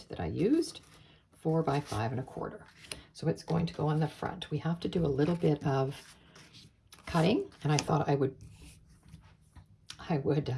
that I used, 4 by 5 1/4. So it's going to go on the front. We have to do a little bit of cutting, and I thought I would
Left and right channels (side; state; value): both; identical; correlation 1.00